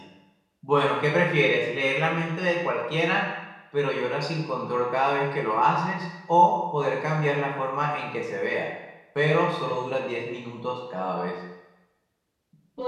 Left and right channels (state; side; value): identical; both; correlation 1.00